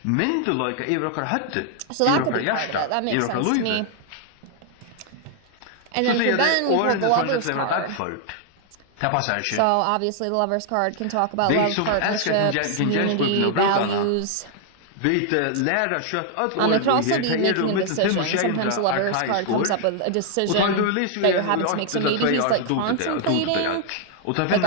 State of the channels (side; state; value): both; different; correlation 0.00